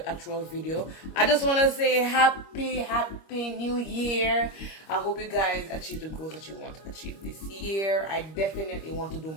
actual video, I just want to say happy new year. I hope you guys achieve the goals that you want to achieve this year. I definitely want to do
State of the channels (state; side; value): late; right; 25 ms